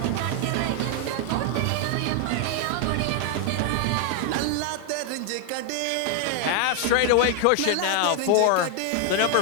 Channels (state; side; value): different; both; correlation 0.00